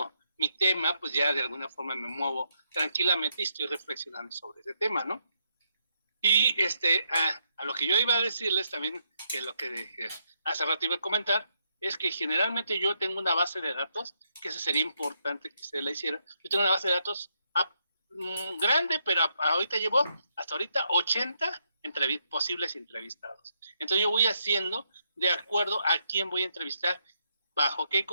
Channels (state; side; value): inverted; both; correlation -0.78